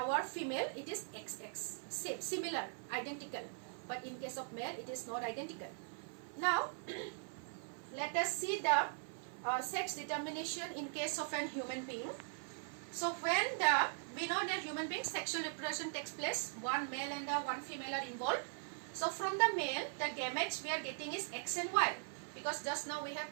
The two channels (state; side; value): silent; left; 51 dB below the other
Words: female, it is XX, same, similar, identical. But in case of male, it is not identical. Now, let us see the sex determination in case of an human being. So when we know that human being sexual reproduction takes place, one male and one female are involved. So from the male, the gametes we are getting is X and Y, because just now we have